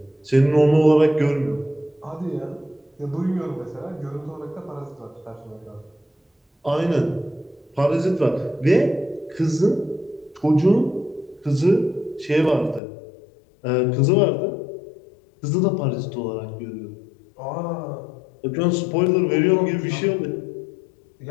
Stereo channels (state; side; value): drops out; right; at 12.8 s